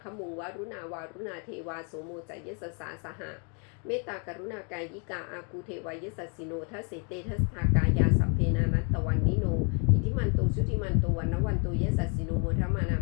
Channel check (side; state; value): right; quieter; 35.7 dB